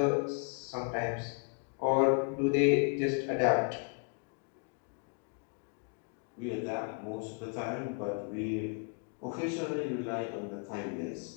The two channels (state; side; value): quieter; right; 38.1 dB